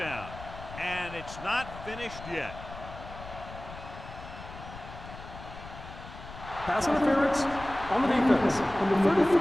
And it's not finished yet. Pass interference on the defense. Number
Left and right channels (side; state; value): left; noise; rumble, 14 dB below the sound